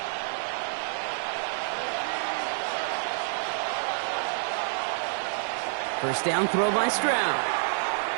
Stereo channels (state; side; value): silent; left; digital silence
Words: First down throw by Stroud.